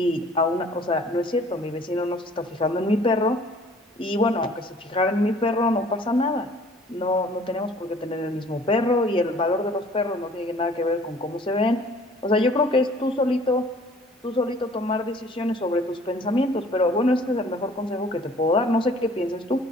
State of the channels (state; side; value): normal; both; correlation 0.53